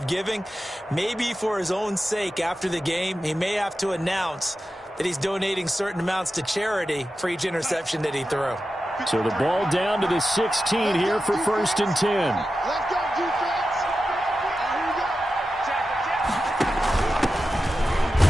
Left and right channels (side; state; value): both; normal; correlation 0.92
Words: giving. Maybe for his own sake, after the game, he may have to announce that he's donating certain amounts to charity for each interception that he threw. So the ball down to the 16 here for 1st and 10. Let's go, defense. Here